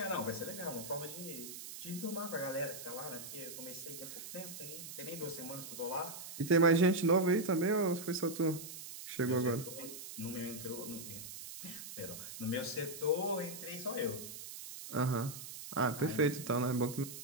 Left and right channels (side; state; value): right; noise; hiss, 10 dB below the sound